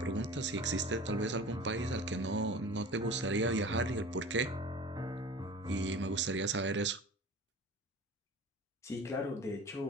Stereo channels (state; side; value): normal; both; correlation 0.39